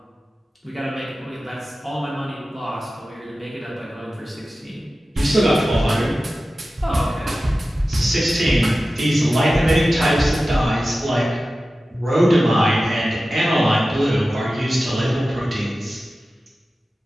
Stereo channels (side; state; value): both; normal; correlation 0.95